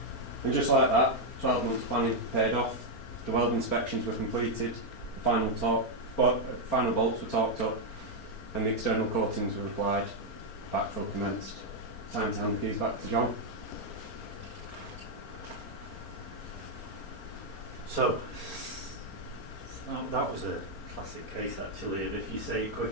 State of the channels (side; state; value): right; late; 4.4 ms